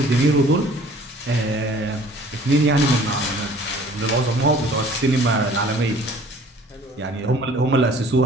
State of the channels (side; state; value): both; normal; correlation 0.52